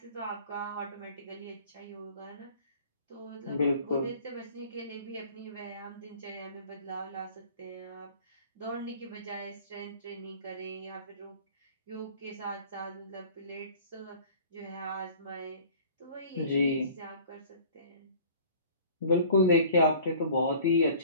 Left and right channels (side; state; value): both; inverted; correlation -0.47